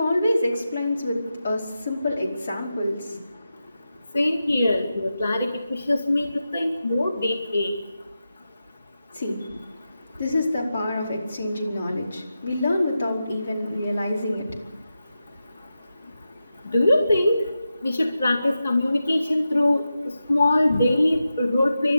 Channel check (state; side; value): inverted; both; correlation -0.91